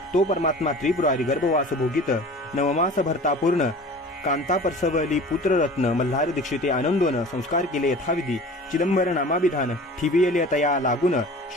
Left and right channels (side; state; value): both; normal; correlation 0.41